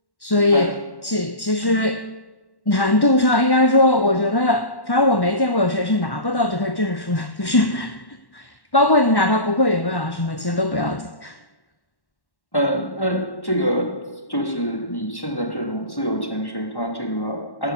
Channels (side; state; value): right; late; 1.1 ms